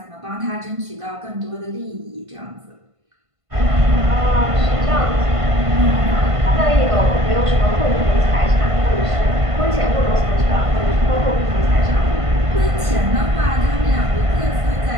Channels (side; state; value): left; late; 1.5 ms